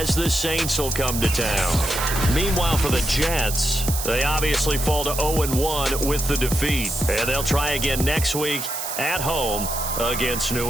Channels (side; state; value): right; noise; hiss, 5 dB below the sound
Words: the Saints will come to town. Meanwhile, for the Jets, They obviously fall to 0-1 with the defeat, and they'll try again next week at home against